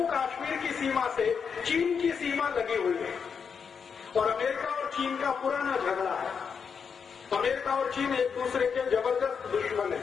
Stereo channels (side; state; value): right; quieter; 6.3 dB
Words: कश्मीर की सीमा से चीन की सीमा लगी हुई है और अमेरिका और चीन का पुराना झगड़ा है। अमेरिका और चीन एक दूसरे के जबरदस्त दुश्मन है।